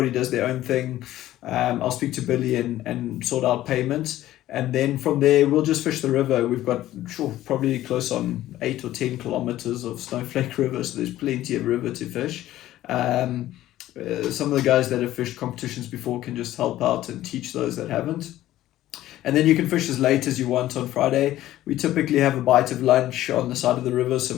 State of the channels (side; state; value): right; quieter; 14.3 dB